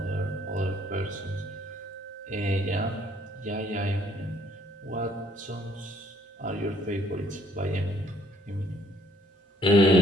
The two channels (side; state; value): both; normal; correlation 0.65